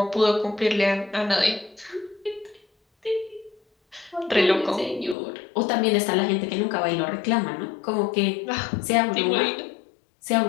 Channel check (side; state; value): right; drops out; at 5.2 s